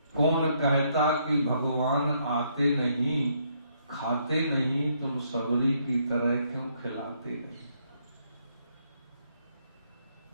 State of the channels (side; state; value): both; inverted; correlation -0.72